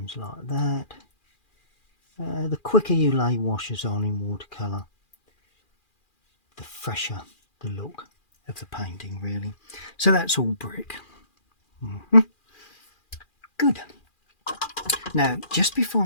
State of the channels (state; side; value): late; right; 2.4 ms